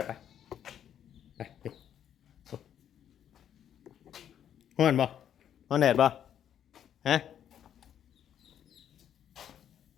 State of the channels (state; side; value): quieter; right; 9.7 dB